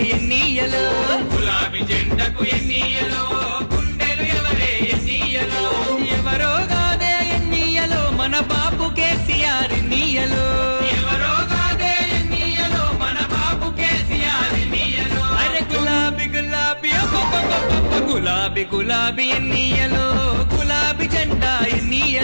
ఎన్నియలో గులాబీ జెండకు ఎన్నియలో గుండెలు ఎవరే ఎన్నియలో ఎవరో కాదే ఎన్నియలో మన బాపు కేసీఆర్ ఎన్నియలో ఎవరో కాదే ఎన్నియలో మన బాపు కేసీఆర్ ఎన్నియలో అరే గులాబీ గులాబీ గులాబీ గులాబీ ఎన్నియలో గులాబీ జెండా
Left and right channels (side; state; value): both; inverted; correlation -1.00